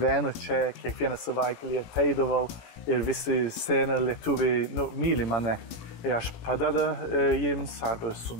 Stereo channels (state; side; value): late; right; 18 ms